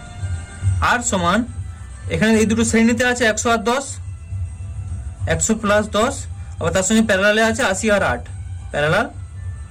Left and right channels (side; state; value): both; identical; correlation 1.00